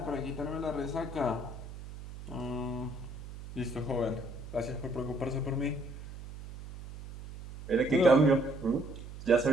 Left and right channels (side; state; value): right; noise; hum, 12 dB below the sound